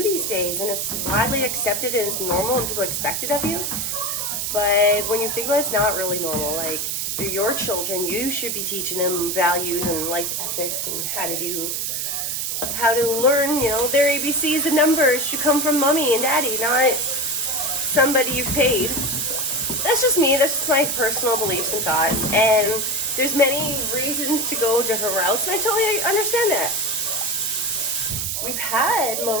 these days, and it's widely accepted and it's normal and people expect it of you. But when you think about it, it's not really normal. Like, they're your children. You should be teaching them values and life ethics and how to learn, you know, their ABCs and numbers should come from mommy and daddy, not somebody you've paid. That's just me. That's just my personal beliefs and thoughts. And there's many reasons to go different routes, and I totally understand that. We've had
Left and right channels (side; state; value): right; noise; hiss, 1 dB below the sound